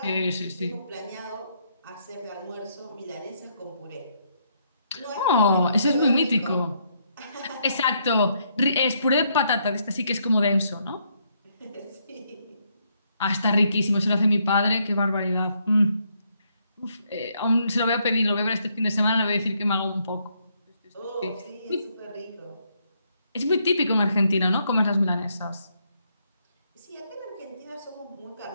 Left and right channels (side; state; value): both; inverted; correlation -0.74